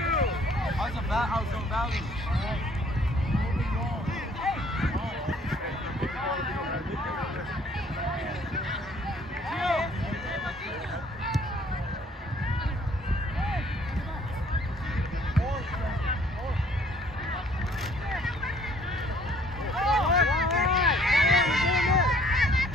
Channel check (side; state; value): both; normal; correlation 0.60